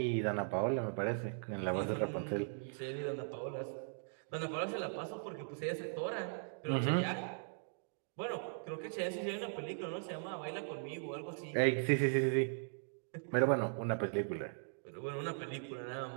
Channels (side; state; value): left; silent; digital silence